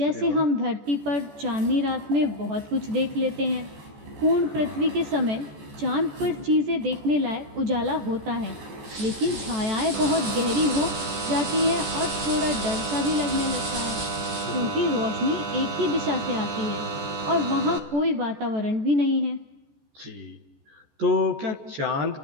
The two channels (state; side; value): late; left; 14 ms